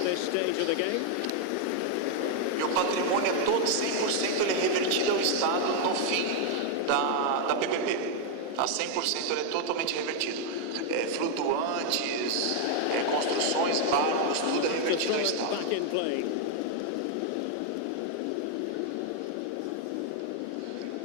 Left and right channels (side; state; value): both; different; correlation 0.00